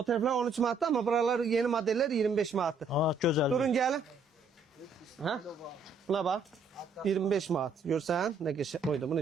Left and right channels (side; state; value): left; quieter; 4.1 dB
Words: tərəflər 13 manatdır, amma buralar yeni modeller 25 manatdır. Aa, gözəl. Durun gəlin. Ha? Buna bax. 25 manat. Görsən? Nə qəşəng. Oyda bu